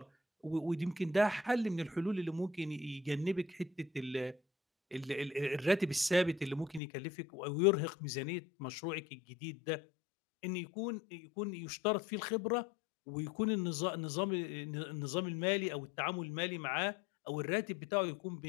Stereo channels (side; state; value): right; drops out; at 6.8 s